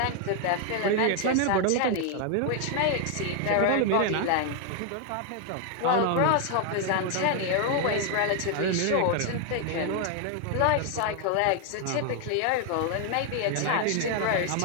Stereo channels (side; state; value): both; different; correlation 0.00